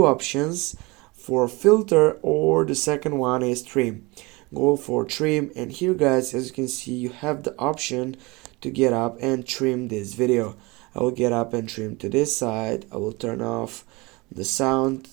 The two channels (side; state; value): left; quieter; 24.7 dB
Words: options for filter, or the second one is trim. Go for trim, and here guys, as you can see, you have the option to get up and trim this video. I will get up and trim to this side. I will turn off the sound.